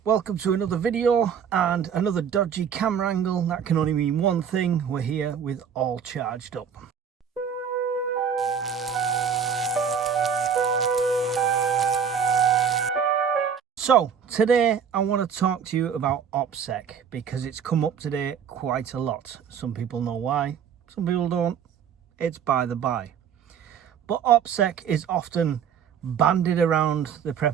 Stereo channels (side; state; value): left; quieter; 7.5 dB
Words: Welcome to another video and another dodgy camera angle. That can only mean one thing: we're here with all charged up. So today I want to talk to you about OPSEC because it's come up today quite a lot. Some people know why, some people don't. It's by the by. But OPSEC is often bandied around the